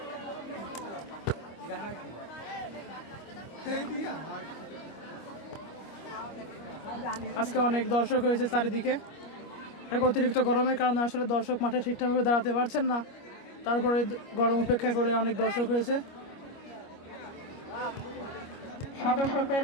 আজকে অনেক দর্শক হয়েছে চারিদিকে। অতিরিক্ত গরমের কারণে আসলে দর্শক মাঠে ঠিকঠাকভাবে দাঁড়াতে পারছেন না, তারপরে গরম উপেক্ষা করে অনেক দর্শক হয়েছে। সদস্যদের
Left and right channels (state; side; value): late; right; 25 ms